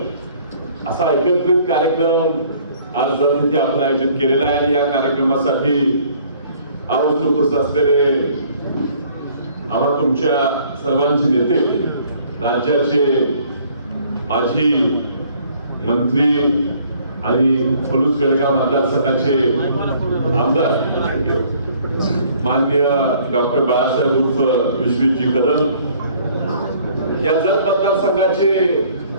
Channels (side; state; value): both; inverted; correlation -0.58